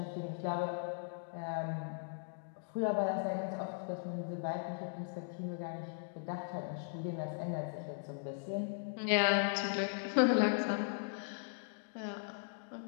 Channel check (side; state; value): right; silent; digital silence